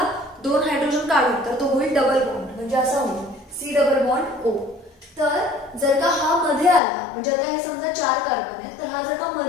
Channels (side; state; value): right; drops out; at 6.8 s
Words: 2 हायड्रोजन काढून तर तो होईल डबल बॉन्ड, म्हणजे असा होईल C डबल बॉन्ड O. तर जर का हा मध्ये आला, म्हणजे आता हे समजा 4 कार्बन आहेत, तर हा जर का